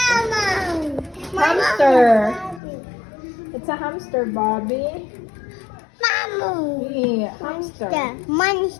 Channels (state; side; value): drops out; right; at 2.6 s